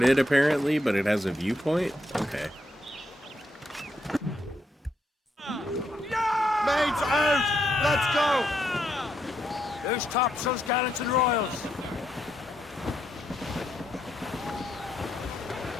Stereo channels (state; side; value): normal; both; correlation 0.79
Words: apparently, but it has a viewpoint? Okay. Mates out. Let's go. There's topsails, gallants, and royals.